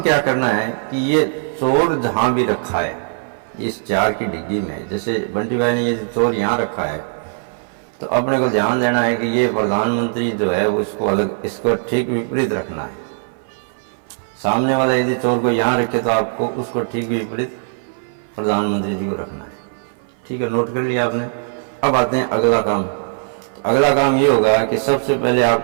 क्या करना है कि ये चोर जहां भी रखा है, इस 4 की डिग्गी में, जैसे बंटी भाई ने ये चोर यहाँ रखा है, तो अपने को ध्यान देना है कि ये प्रधानमंत्री जो है वो इसको अलग, इसको ठीक विपरीत रखना है। सामने वाला यदि चोर को यहाँ रखे तो आपको उसको ठीक विपरीत प्रधानमंत्री जी को रखना है। ठीक है, नोट कर लिया आपने। अब आते हैं अगला काम। तो अगला काम ये होगा कि सबसे पहले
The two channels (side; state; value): left; silent; 60 dB below the other